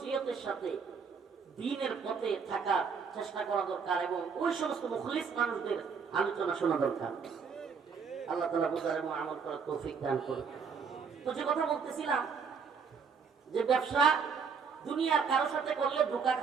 সাথে দ্বীনের পথে থাকার চেষ্টা করা দরকার, এবং ওই সমস্ত মুখলিস মানুষদের আলোচনা শোনা দরকার। আল্লাহ তাআলা বুঝার এবং আমল করার তৌফিক দান করুন। তো যে কথা বলতেছিলাম, যে ব্যবসা দুনিয়ার কারোর সাথে করলে ধোঁকা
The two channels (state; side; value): quieter; left; 5.9 dB